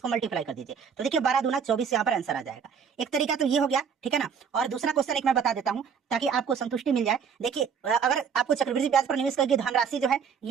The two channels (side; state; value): left; quieter; 6.8 dB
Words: मल्टीप्लाई कर दीजिए, तो देखिए 12 दूना 24 यहाँ पर आंसर आ जाएगा। एक तरीका तो ये हो गया, ठीक है ना। और दूसरा क्वेश्चन एक मैं बता देता हूँ ताकि आपको संतुष्टि मिल जाए। देखिए अगर आपको चक्रवृद्धि ब्याज पर निवेश करके धनराशि जो है